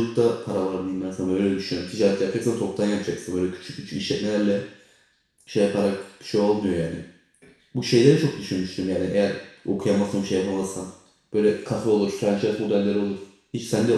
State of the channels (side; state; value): both; identical; correlation 1.00